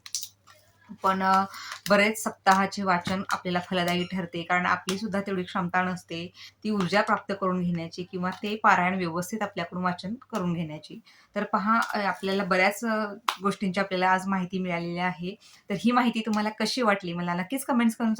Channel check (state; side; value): identical; both; correlation 1.00